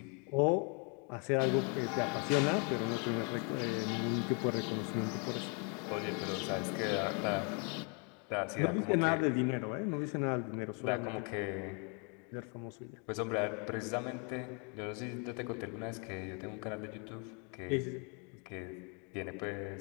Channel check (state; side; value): quieter; right; 36.6 dB